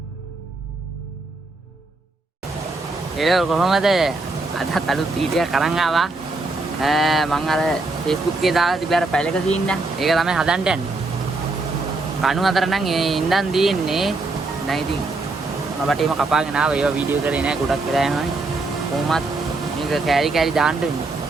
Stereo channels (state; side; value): quieter; left; 3.3 dB